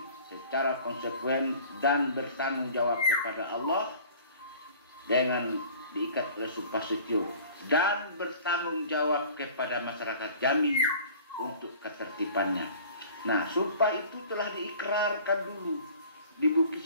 secara konsekuen dan bertanggung jawab kepada Allah dengan diikat oleh sumpah setio dan bertanggung jawab kepada masyarakat Jambi untuk ketertibannya. Nah, sumpah itu telah diikrarkan dulu di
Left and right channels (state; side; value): inverted; both; correlation -0.47